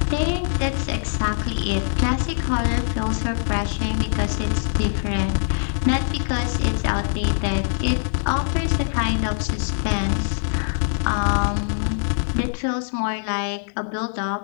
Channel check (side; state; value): right; silent; digital silence